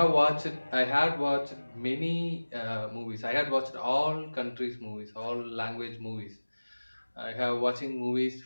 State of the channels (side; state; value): both; inverted; correlation -1.00